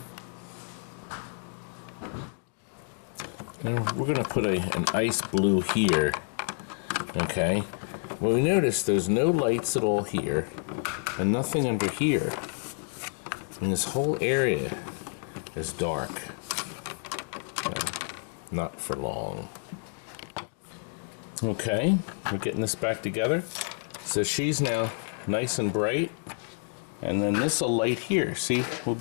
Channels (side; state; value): right; silent; 55 dB below the other